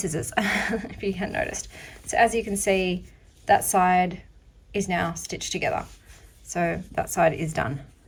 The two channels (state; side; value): identical; both; correlation 1.00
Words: if you hadn't noticed. So as you can see, that side is now stitched together. So that side is done.